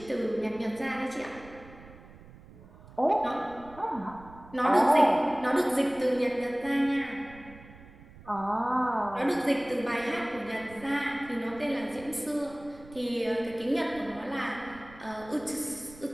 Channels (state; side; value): noise; right; rumble, 20 dB below the sound